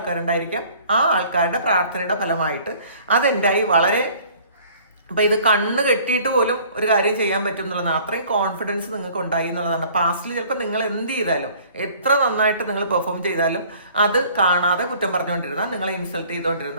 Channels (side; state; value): both; inverted; correlation -0.53